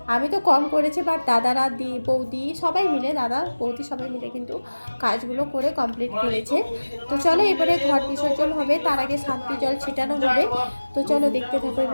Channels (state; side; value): inverted; both; correlation -1.00